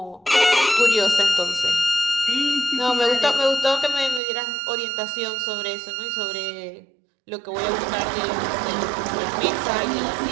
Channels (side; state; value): left; drops out; at 4.2 s